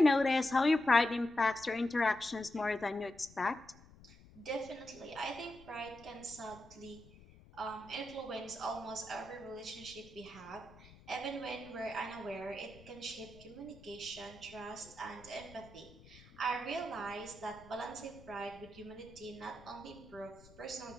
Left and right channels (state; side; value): noise; left; rumble, 21 dB below the sound